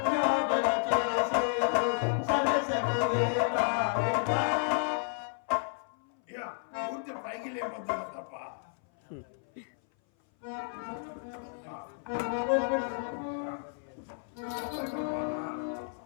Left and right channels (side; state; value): right; silent; 57 dB below the other